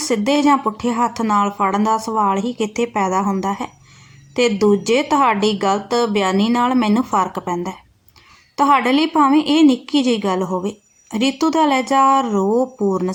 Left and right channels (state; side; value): identical; both; correlation 1.00